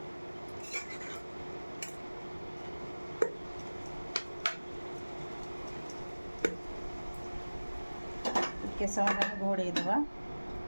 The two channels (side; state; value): both; inverted; correlation -1.00